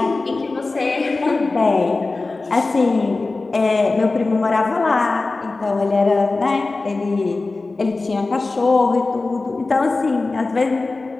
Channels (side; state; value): right; quieter; 3.5 dB